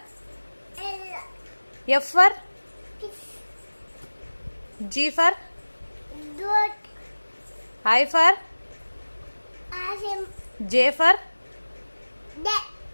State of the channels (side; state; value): both; inverted; correlation -1.00